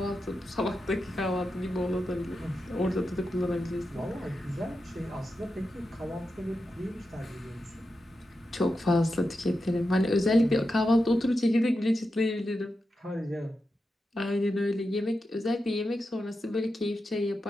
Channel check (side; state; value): both; normal; correlation 0.89